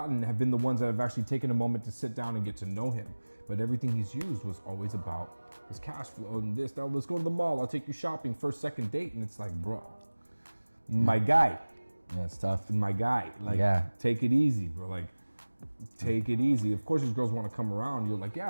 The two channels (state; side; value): inverted; both; correlation -1.00